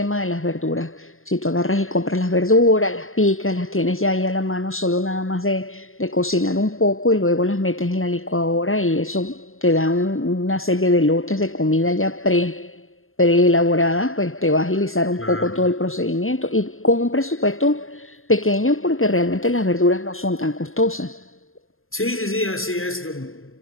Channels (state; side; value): late; right; 0.60 ms